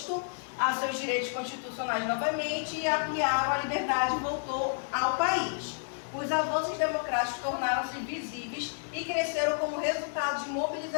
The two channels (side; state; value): right; silent; digital silence